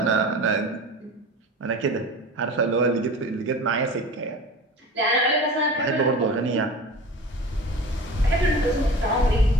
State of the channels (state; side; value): normal; both; correlation 0.36